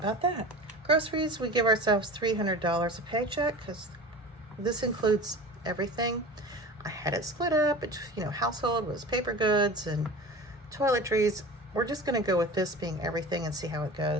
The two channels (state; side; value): normal; both; correlation 0.35